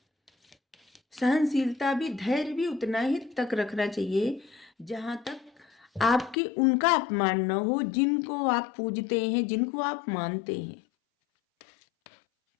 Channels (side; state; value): right; drops out; at 6.4 s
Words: सहनशीलता भी, धैर्य भी उतना ही तक रखना चाहिए जहाँ तक आपके उनका अपमान न हो जिनको आप पूजते हैं, जिनको आप मानते हैं।